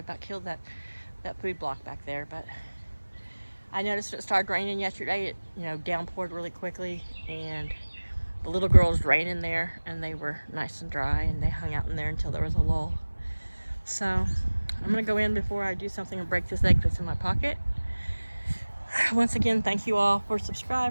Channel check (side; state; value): both; inverted; correlation -1.00